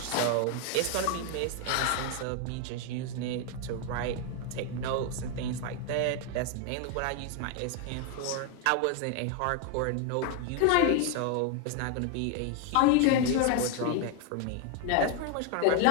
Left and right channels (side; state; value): both; different; correlation 0.01